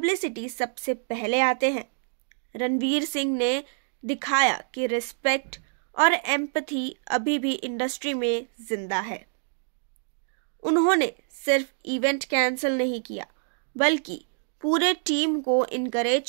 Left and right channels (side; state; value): left; silent; digital silence